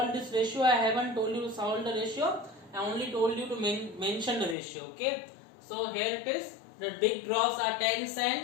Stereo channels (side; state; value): right; drops out; at 4.5 s